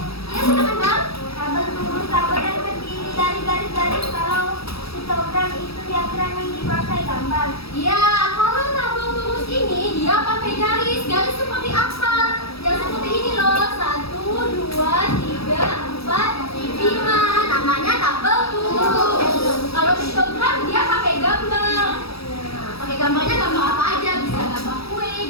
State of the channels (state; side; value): late; right; 0.77 ms